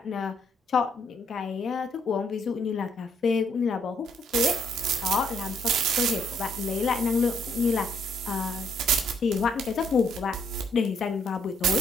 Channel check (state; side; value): normal; both; correlation 0.70